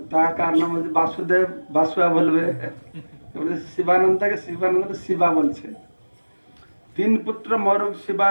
তার কার নাম যদি বাসুদেব বাসুয়া বলবে, শিবানন্দকে শিবানন্দ শিবা বলছে। তিন পুত্র মরুক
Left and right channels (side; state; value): both; inverted; correlation -1.00